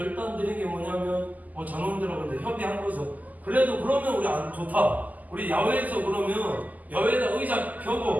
드린 게 뭐냐면 전원들하고 근데 협의한 거죠. 그래도 그러면 우리 안 좋다. 우리 야외에서 그러면 야외에다 의자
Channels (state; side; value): late; left; 0.080 ms